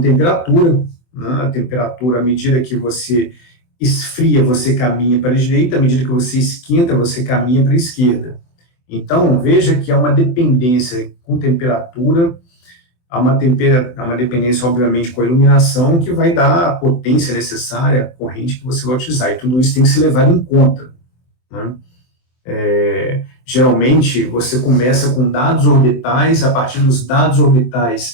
temperatura, né? A temperatura, à medida que você esfria, você caminha para a direita, à medida que você esquenta, você caminha para a esquerda. Então, veja que há uma dependência com temperatura, há uma dependência, obviamente, com a iluminação, que vai dar a potência necessária, a corrente que você vai utilizar, e tudo isso tem que ser levado em conta, né? Geralmente, você começa com dados orbitais, a partir dos dados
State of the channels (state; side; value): late; right; 24 ms